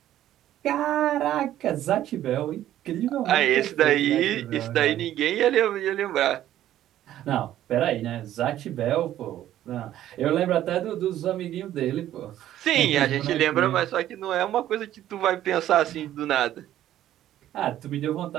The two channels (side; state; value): left; quieter; 12.6 dB